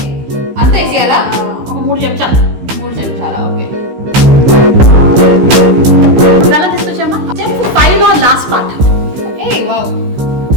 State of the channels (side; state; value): left; late; 16 ms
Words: అంత వేసేయాలా? ఒక 3 చెంచాలు. 3 చెంచాలా? ఓకే. బెల్లం తీసుకొచ్చామా? స్టెప్ 5 లో లాస్ట్ పార్ట్. ఏ వావ్,